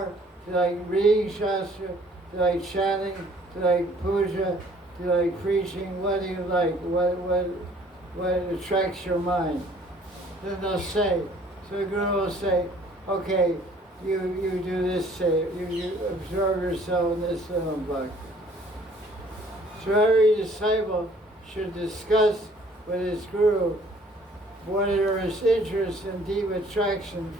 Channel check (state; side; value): normal; both; correlation 0.57